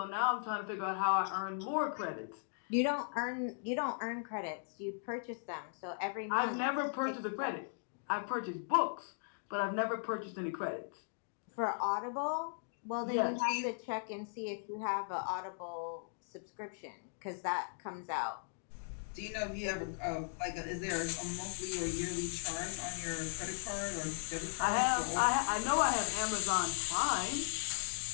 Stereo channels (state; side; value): silent; right; digital silence